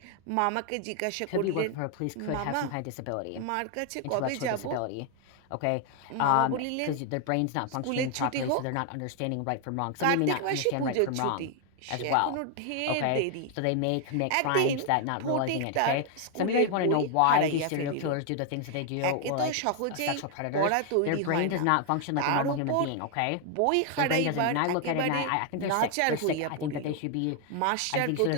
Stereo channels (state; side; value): different; both; correlation 0.00